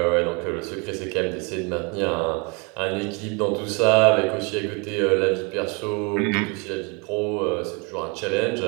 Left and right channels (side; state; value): left; quieter; 31.4 dB